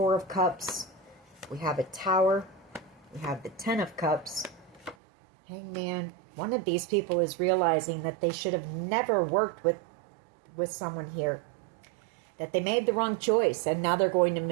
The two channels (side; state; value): left; drops out; at 5.0 s